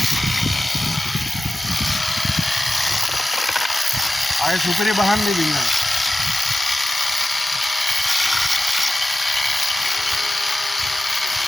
आए सुपरी बहान नहीं दिया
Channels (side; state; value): both; normal; correlation 0.94